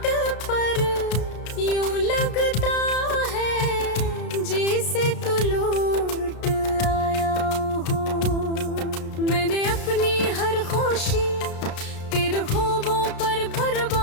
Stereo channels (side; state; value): right; late; 33 ms